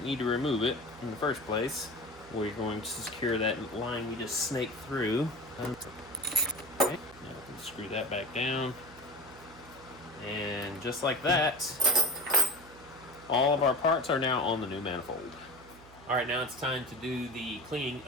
need to remove it in the first place. We're going to secure that line we just snaked through. Okay, now we can screw that back down. And just like that, all of our parts are now on the new manifold. All right, now it's time to do the cleaning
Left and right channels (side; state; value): right; noise; hum, 22 dB below the sound